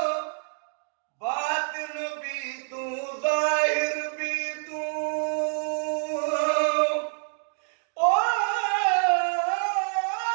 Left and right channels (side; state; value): left; silent; digital silence